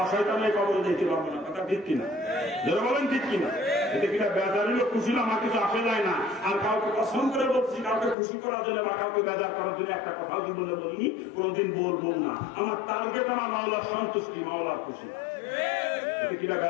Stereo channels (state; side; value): drops out; right; at 8.2 s